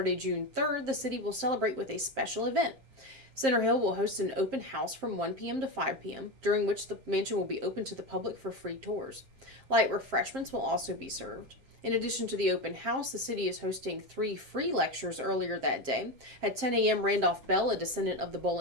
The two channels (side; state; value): left; late; 7.5 ms